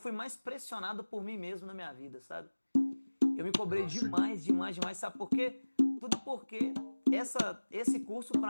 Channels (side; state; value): both; inverted; correlation -1.00